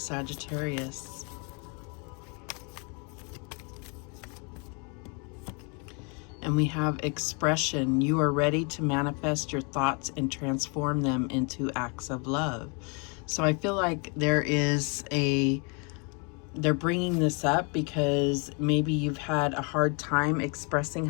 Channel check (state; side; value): quieter; right; 34.1 dB